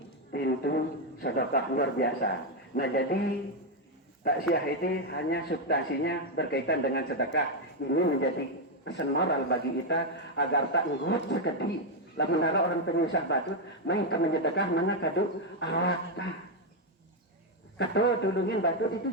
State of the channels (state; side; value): normal; both; correlation 0.03